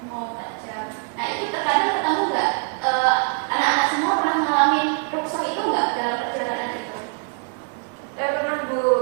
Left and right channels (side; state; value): left; quieter; 39.1 dB